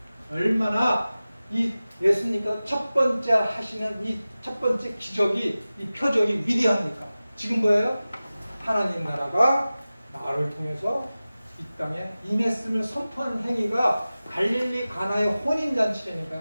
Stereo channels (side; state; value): both; inverted; correlation -0.97